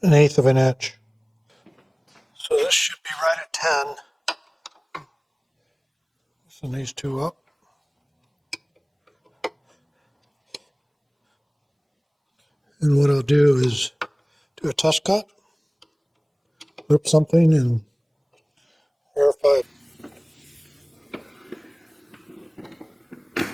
1/8 of an inch. So this should be right at 10. Loosen these 2 up. And what I'll do is do a test cut, rip something and verify.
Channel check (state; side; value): identical; both; correlation 1.00